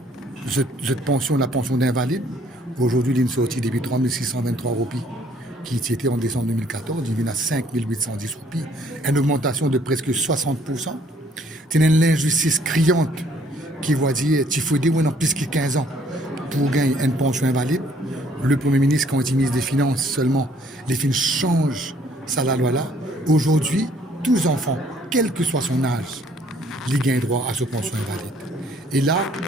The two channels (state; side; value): normal; both; correlation 0.62